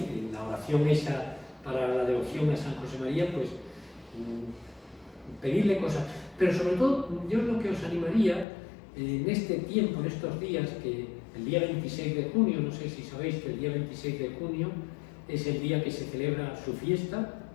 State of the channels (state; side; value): drops out; right; at 8.5 s